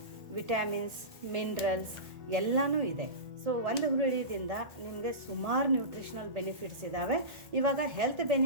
ವಿಟಮಿನ್ಸ್, ಮಿನರಲ್ಸ್ ಎಲ್ಲನೂ ಇದೆ. ಸೊ ಒಂದು ಹುರುಳಿದಿಂದ ನಿಮಗೆ ಸುಮಾರು ನ್ಯೂಟ್ರಿಷನಲ್ ಬೆನಿಫಿಟ್ಸ್ ಇದ್ದಾವೆ. ಇವಾಗ ಹೆಲ್ತ್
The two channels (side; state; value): left; late; 1.7 ms